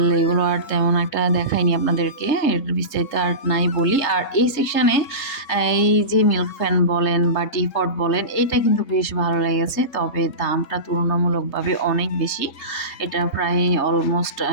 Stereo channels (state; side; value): late; right; 3.3 ms